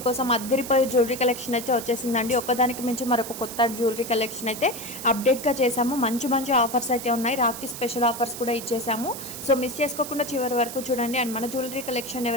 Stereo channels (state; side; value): noise; right; hiss, 10 dB below the sound